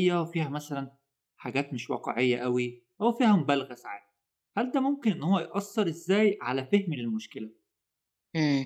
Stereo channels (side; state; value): both; identical; correlation 1.00